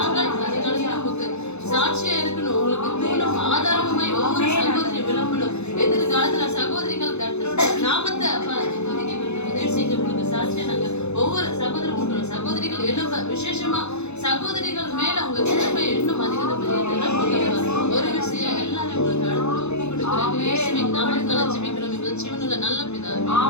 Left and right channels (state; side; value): late; right; 0.81 ms